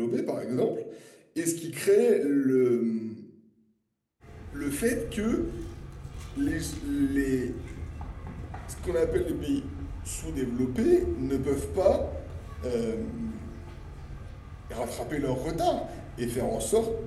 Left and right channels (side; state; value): both; identical; correlation 1.00